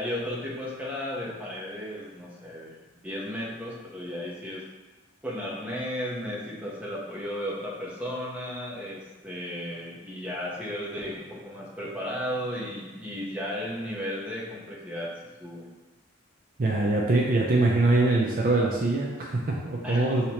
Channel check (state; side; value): normal; both; correlation 0.63